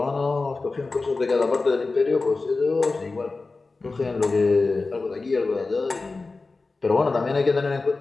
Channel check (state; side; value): quieter; right; 3.7 dB